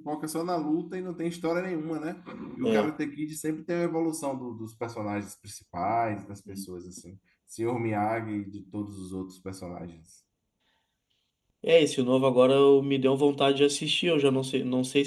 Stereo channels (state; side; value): identical; both; correlation 1.00